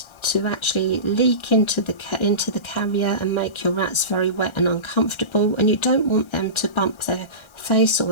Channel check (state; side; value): late; right; 1.3 ms